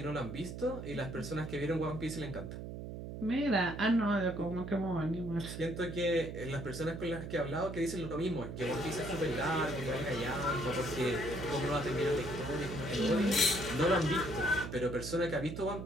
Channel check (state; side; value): noise; right; hum, 8 dB below the sound